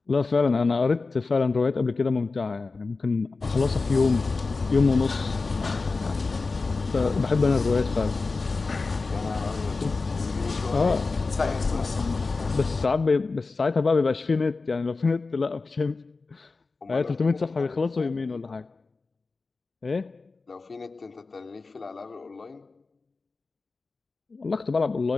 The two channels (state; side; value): quieter; right; 3.9 dB